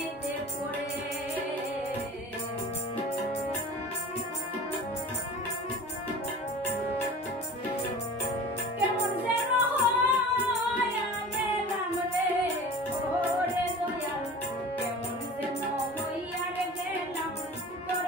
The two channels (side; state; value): both; normal; correlation 0.38